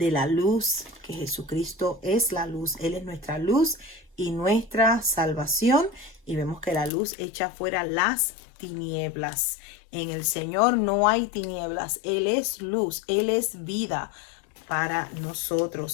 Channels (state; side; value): drops out; right; at 6.9 s